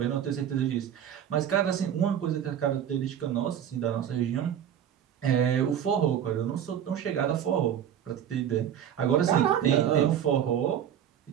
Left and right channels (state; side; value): quieter; left; 9.6 dB